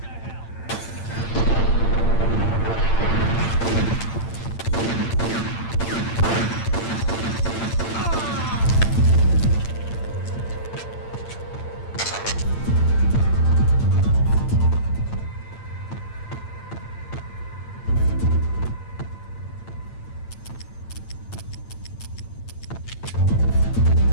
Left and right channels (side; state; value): right; late; 8.8 ms